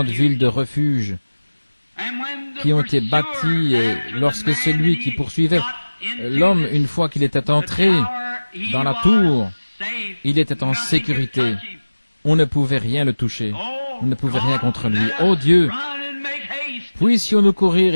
villes de refuge qui ont été bâties et lorsque celui qui poursuivait l'homme, une fois qu'il était entré dans la tour, il était en sécurité. On ne pouvait rien le toucher. On ne pouvait rien contre lui. Ô Dieu, puissions-nous courir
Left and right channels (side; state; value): both; inverted; correlation -1.00